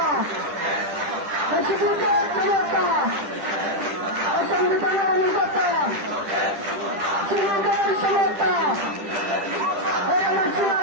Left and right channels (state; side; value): late; left; 10 ms